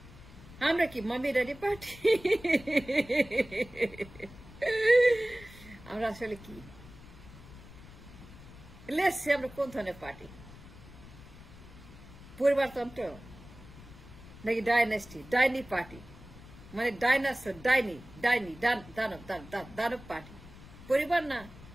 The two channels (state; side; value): noise; left; rumble, 18 dB below the sound